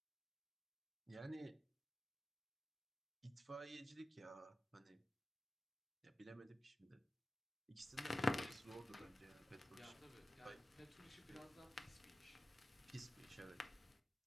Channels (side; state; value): both; normal; correlation 0.94